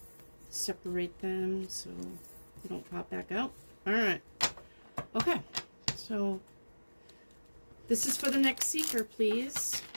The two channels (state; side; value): inverted; both; correlation -1.00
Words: Separate them so they don't pop back out. All right. Okay, so this is for the next seeker, please.